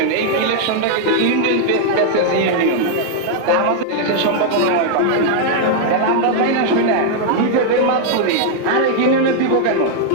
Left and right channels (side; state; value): both; different; correlation 0.00